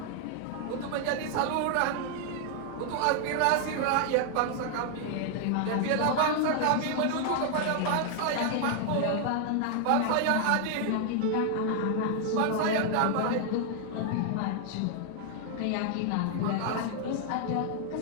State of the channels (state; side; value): different; both; correlation 0.00